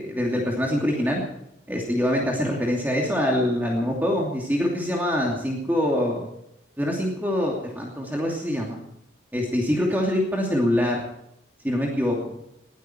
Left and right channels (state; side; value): normal; both; correlation 0.72